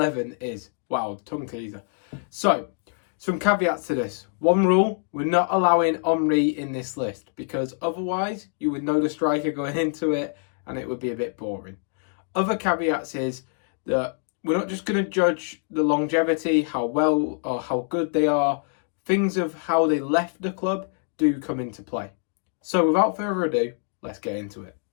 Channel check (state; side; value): silent; right; 62 dB below the other